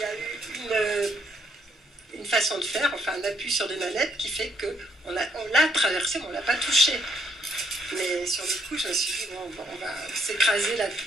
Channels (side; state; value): both; normal; correlation 0.71